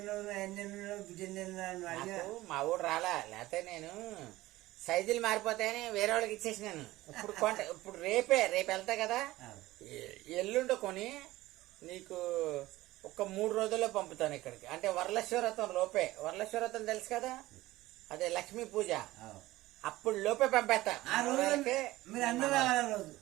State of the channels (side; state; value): left; quieter; 17.5 dB